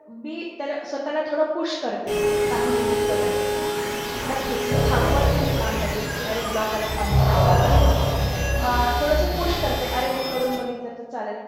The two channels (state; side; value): identical; both; correlation 1.00